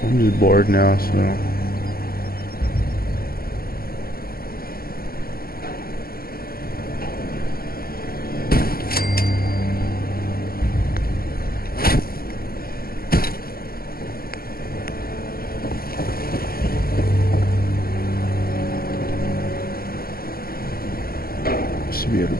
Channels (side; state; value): right; late; 0.44 ms